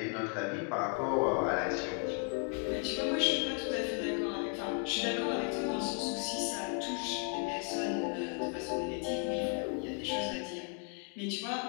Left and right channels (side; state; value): right; quieter; 37.8 dB